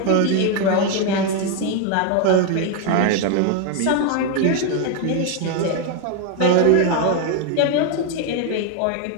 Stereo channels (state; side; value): different; both; correlation 0.01